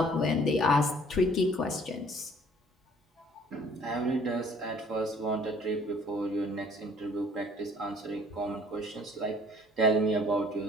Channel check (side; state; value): both; normal; correlation 0.56